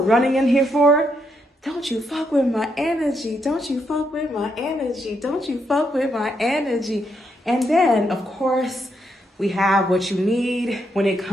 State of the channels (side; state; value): both; normal; correlation 0.79